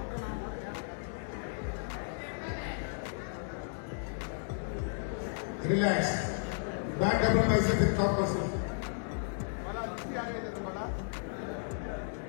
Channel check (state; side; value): silent; right; digital silence